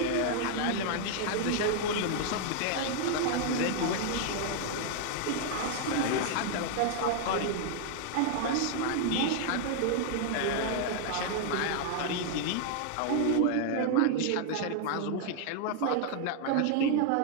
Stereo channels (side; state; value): both; different; correlation 0.00